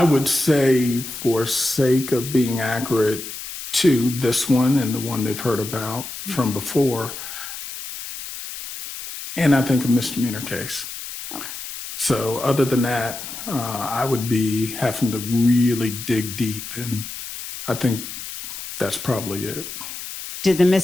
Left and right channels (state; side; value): noise; left; hiss, 10 dB below the sound